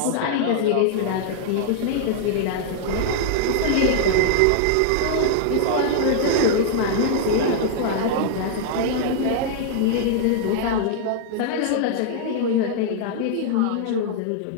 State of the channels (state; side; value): different; both; correlation -0.01